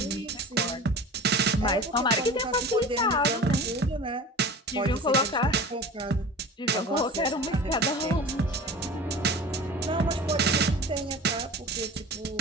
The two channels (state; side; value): normal; both; correlation 0.37